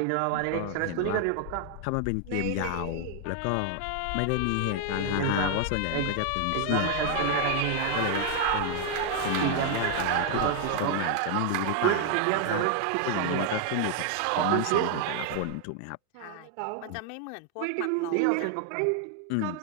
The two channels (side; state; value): both; different; correlation 0.00